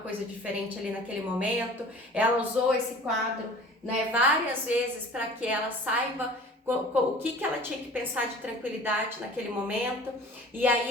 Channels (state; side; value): normal; both; correlation 0.44